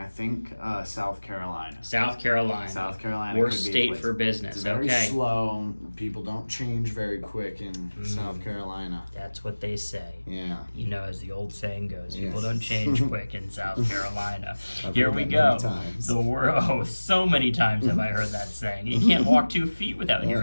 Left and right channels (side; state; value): both; inverted; correlation -1.00